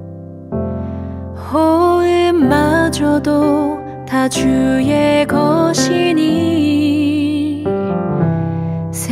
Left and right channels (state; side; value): identical; both; correlation 1.00